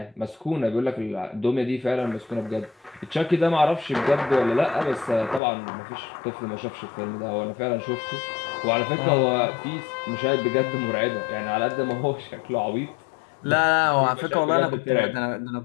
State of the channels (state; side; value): drops out; right; at 5.4 s